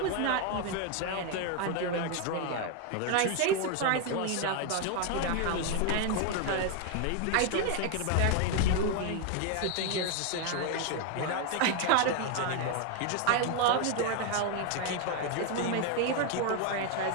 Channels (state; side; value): different; both; correlation 0.01